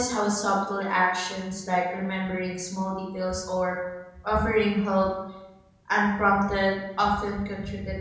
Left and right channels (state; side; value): identical; both; correlation 1.00